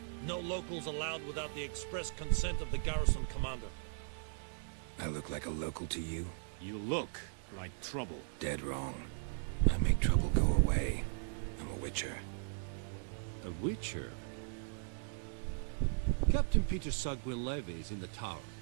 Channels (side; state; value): left; silent; digital silence